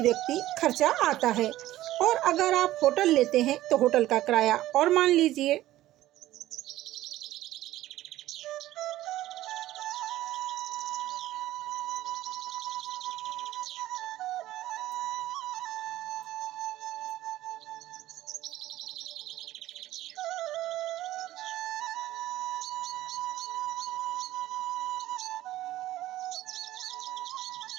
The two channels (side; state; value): left; quieter; 15.0 dB